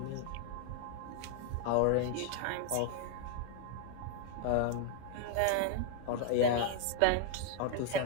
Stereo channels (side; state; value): both; different; correlation 0.00